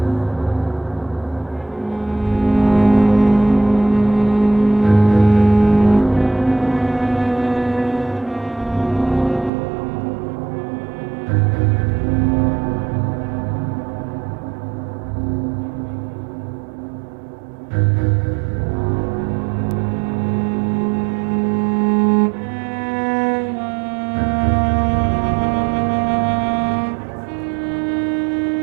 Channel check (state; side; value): drops out; left; at 9.5 s